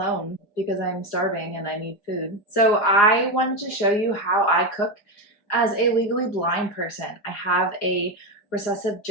because I'm starving and I need food. So I wanted to show you how I cook as a legally blind person. I have a recessive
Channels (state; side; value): late; right; 4.9 ms